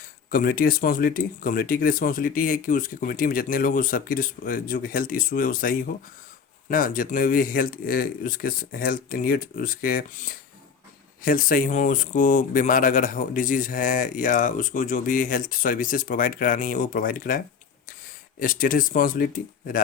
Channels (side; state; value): right; quieter; 6.3 dB